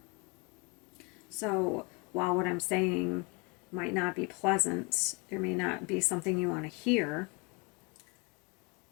So while what I'm saying might not be pleasant, there may not be something you want to hear,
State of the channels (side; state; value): right; quieter; 30.3 dB